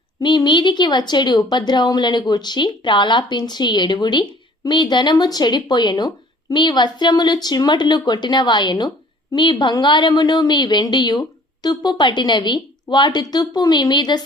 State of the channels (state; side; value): normal; both; correlation 0.53